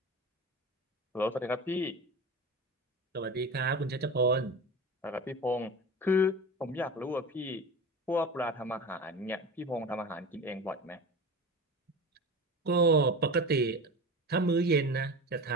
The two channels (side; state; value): both; normal; correlation 0.31